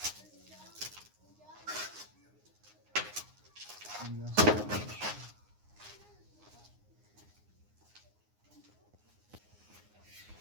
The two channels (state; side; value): late; left; 9.6 ms